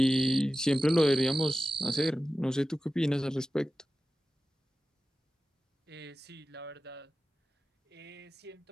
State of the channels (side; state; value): both; normal; correlation 0.95